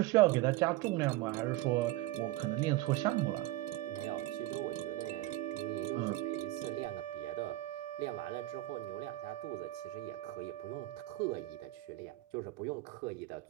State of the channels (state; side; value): quieter; left; 17.0 dB